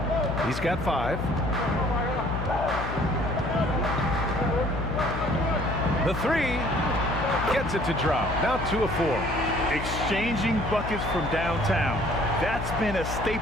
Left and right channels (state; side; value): noise; left; hum, 6 dB below the sound